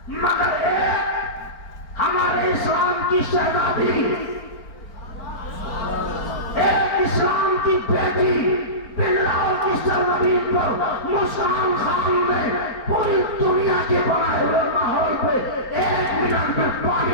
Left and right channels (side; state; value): right; late; 4.4 ms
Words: مگر ایک ہمارے اسلام کی شہزادی، ایک اسلام کی بیٹی بلاؤ کی سرزمین پر مسکان خان نے پوری دنیا کے بنائے ہوئے ماحول پہ 1 منٹ میں